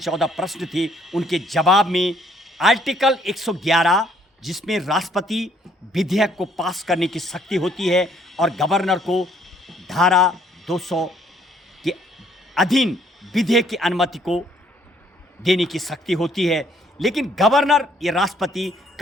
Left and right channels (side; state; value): both; normal; correlation 0.65